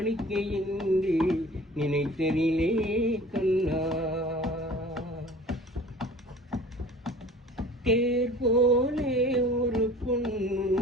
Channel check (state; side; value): normal; both; correlation 0.44